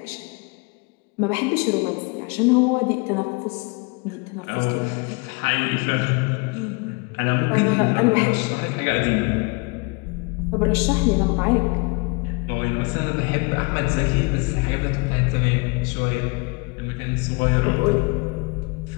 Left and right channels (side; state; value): right; quieter; 29.9 dB